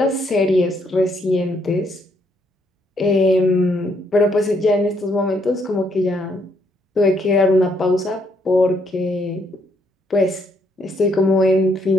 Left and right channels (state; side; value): normal; both; correlation 0.72